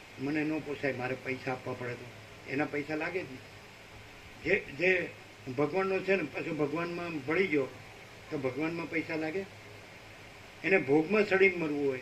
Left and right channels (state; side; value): identical; both; correlation 1.00